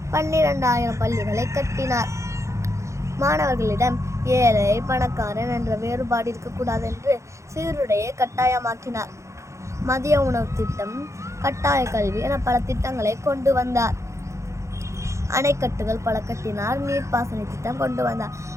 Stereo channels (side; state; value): left; late; 0.14 ms